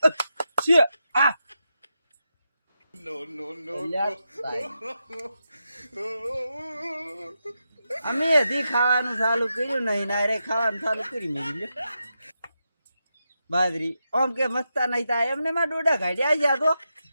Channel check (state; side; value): inverted; both; correlation -0.87